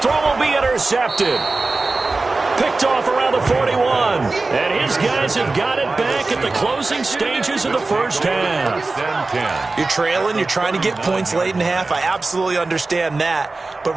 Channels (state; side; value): quieter; left; 3.5 dB